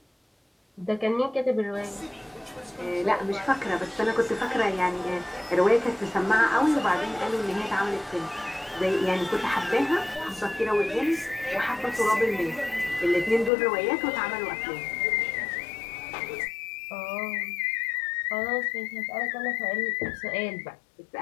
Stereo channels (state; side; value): drops out; right; at 13.5 s